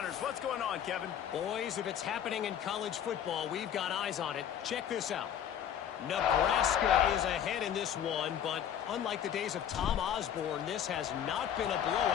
What's going on, Kevin? Boys, if it's happening in college football, we've got eyes on it. Check this out. Nebraska is ahead in this one, but unlike the days of Tom Osborne, this has not been a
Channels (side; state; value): right; quieter; 9.4 dB